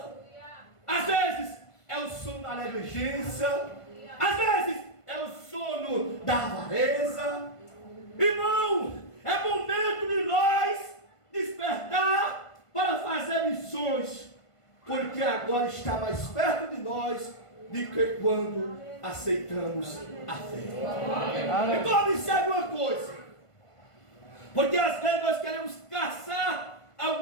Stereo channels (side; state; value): right; late; 1.5 ms